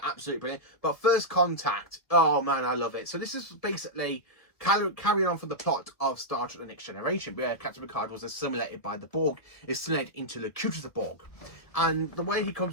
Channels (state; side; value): late; right; 1.5 ms